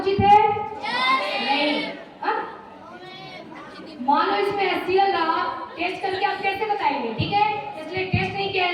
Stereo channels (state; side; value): identical; both; correlation 1.00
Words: है, नहीं। मान लो इसमें HCl रहा, टेस्ट करके आप कैसे बताएंगे, ठीक है। इसलिए टेस्ट नहीं किया